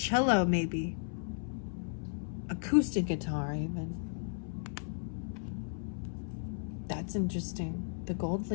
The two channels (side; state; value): right; silent; 55 dB below the other